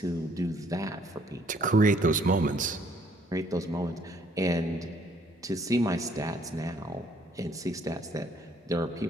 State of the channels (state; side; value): normal; both; correlation 0.64